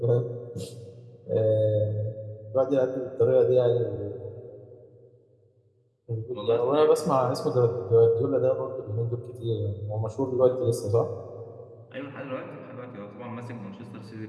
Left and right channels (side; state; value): both; identical; correlation 1.00